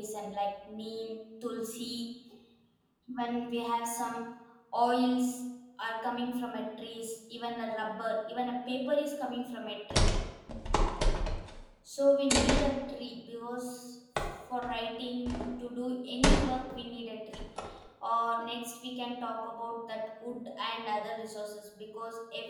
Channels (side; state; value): both; identical; correlation 1.00